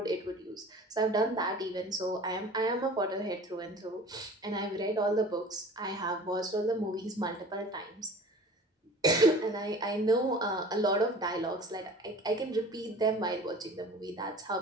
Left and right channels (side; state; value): both; normal; correlation 0.43